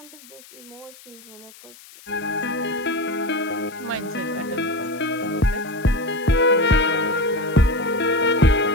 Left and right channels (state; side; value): noise; left; hiss, 21 dB below the sound